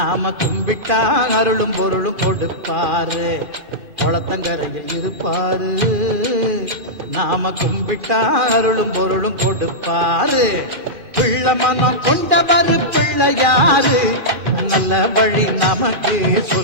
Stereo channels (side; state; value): left; late; 2.6 ms